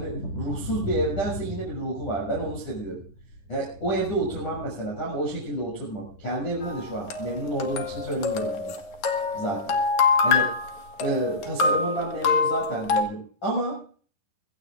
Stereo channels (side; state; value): right; late; 11 ms